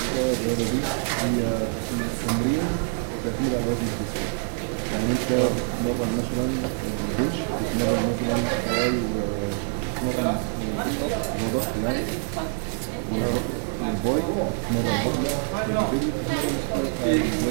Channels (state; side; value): silent; left; 61 dB below the other